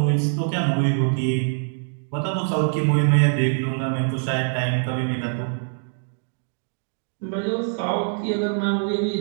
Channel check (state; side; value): silent; left; 63 dB below the other